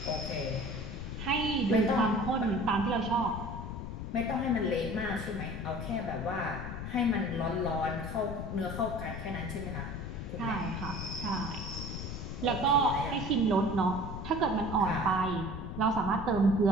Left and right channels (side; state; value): left; noise; rumble, 6 dB below the sound